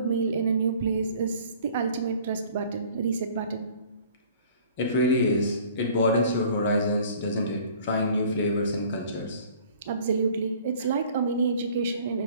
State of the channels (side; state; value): both; inverted; correlation -0.51